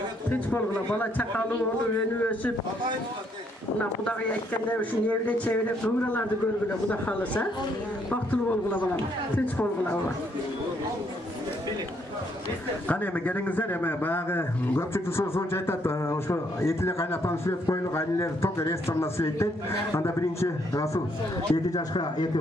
Hiç bolgula bala çakalı olup, önü ösüp, buna kudağı yetkende şu evle çevre kıvralarda görgüle kuda kalırsa, baktılı bolgula balam. Hiç bolgula balam. Qani emi gelingizler emi bayağı köpçülük sonuç aytат, oşo etile kaynatan süret koyuluk aileler tok restoranda sürettet. Anda birinci Rasul 2 yaşka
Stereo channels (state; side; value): normal; both; correlation 0.71